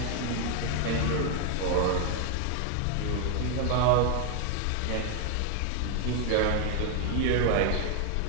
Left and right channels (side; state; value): both; different; correlation 0.01